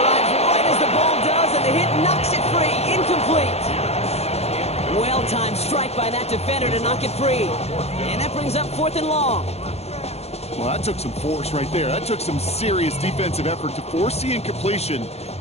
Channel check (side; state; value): right; late; 0.30 ms